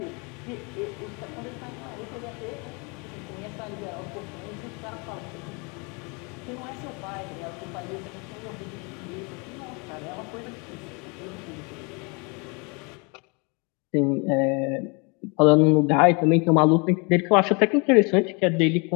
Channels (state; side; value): quieter; right; 31.4 dB